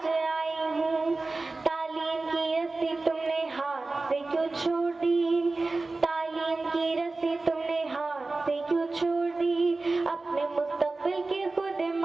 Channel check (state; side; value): quieter; left; 3.4 dB